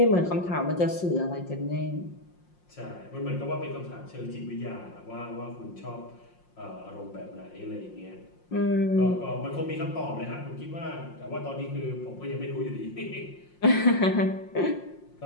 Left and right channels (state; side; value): late; right; 5.6 ms